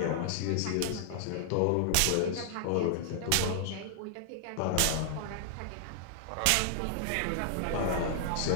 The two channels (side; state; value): both; different; correlation -0.01